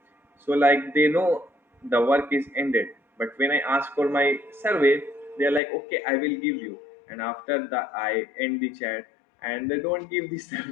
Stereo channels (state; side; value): drops out; right; at 5.6 s